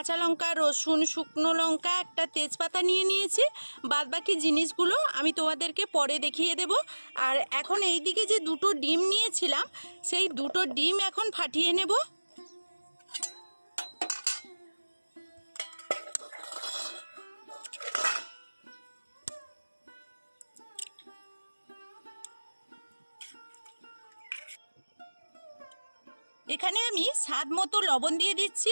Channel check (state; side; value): inverted; both; correlation -1.00